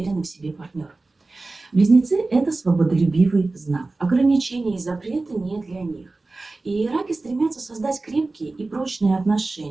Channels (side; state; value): left; quieter; 3.3 dB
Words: в себе партнер. Близнецы – это свободолюбивый знак. Ограничения и запреты не для них. И раки стремятся создать крепкие и прочные